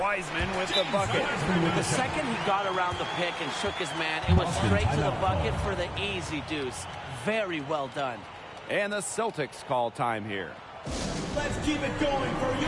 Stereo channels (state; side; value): identical; both; correlation 1.00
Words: with the bucket. The second he got around the pick and shook his man, it was straight to the bucket for the easy deuce. Very well done. And the Celtics call time here. Let's keep it going for